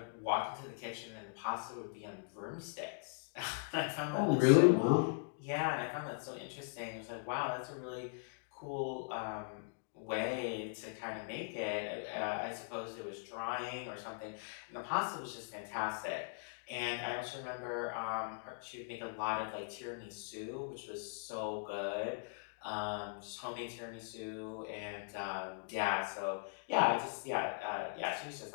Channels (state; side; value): silent; right; digital silence